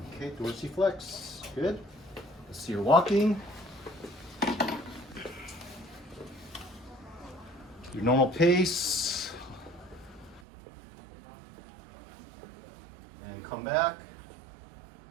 Okay, dorsiflex. Good. Let's see your walking. Your normal pace. And come back.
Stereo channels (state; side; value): drops out; left; at 10.4 s